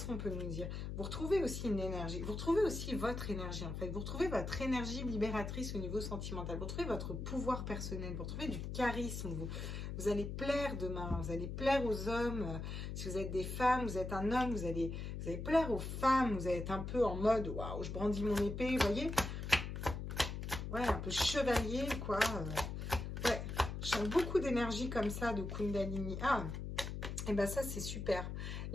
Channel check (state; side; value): noise; left; hum, 5 dB below the sound